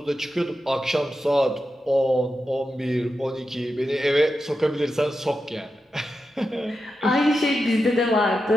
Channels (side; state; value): both; normal; correlation 0.89